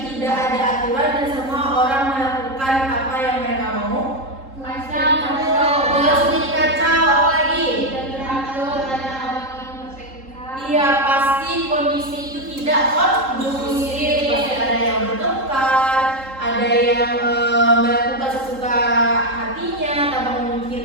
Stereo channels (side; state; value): left; late; 3.7 ms